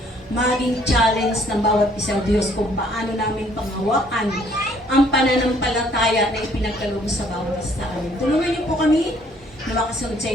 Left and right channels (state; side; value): normal; both; correlation 0.62